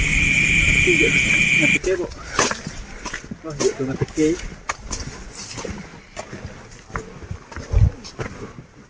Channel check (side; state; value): both; identical; correlation 1.00